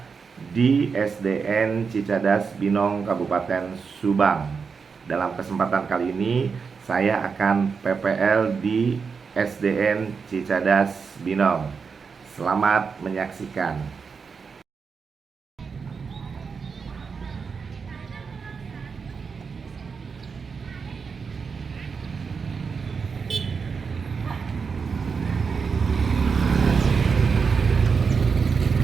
di SDN Cicadas Binong, Kabupaten Subang. Dalam kesempatan kali ini saya akan PPL di SDN Cicadas Binong. Selamat menyaksikan.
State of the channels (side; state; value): left; quieter; 5.5 dB